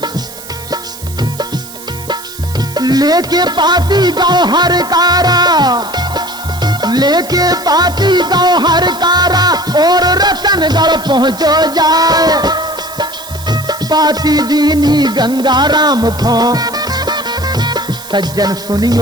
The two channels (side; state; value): right; noise; hiss, 15 dB below the sound